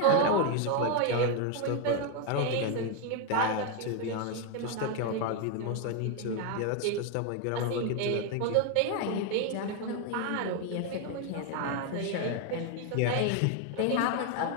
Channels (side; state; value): both; different; correlation 0.01